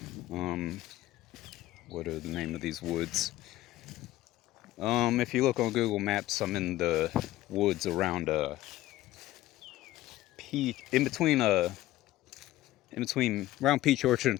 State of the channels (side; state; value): right; quieter; 15.8 dB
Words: Um, what are the name of these woods? If you look on Google Maps, I'm in the woods around in between around Peach Orchard